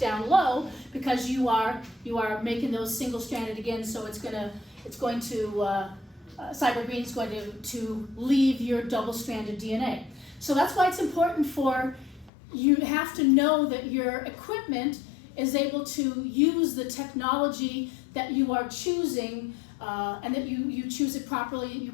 low, because you are making those single-stranded again, so cyber green is going to leave your double-stranded DNA. So that's why it's important you have to know that your equipment is able to use the technology that you are choosing, and that you choose it properly, you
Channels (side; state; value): right; drops out; at 12.3 s